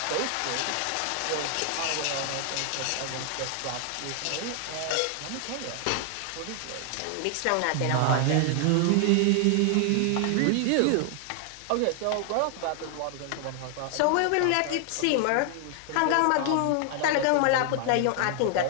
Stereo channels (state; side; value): different; both; correlation 0.00